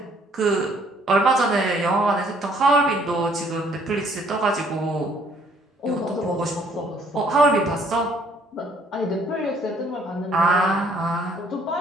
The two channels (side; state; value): both; normal; correlation 0.62